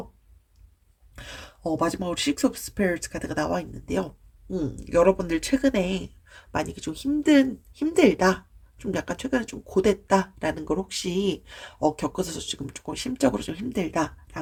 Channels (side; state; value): both; identical; correlation 1.00